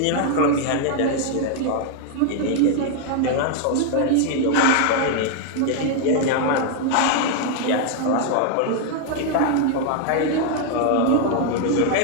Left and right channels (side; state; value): both; different; correlation 0.00